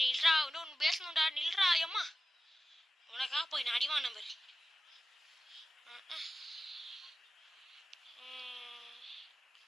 நில்றா, இன்னும் பேசணும்டா, நில்றா. அம்மா உனக்கா போய் நான் அடிவான் நம்பர்.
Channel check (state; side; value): normal; both; correlation 0.94